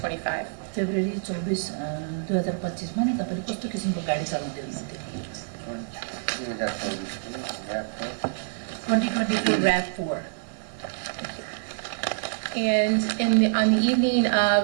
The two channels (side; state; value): left; silent; digital silence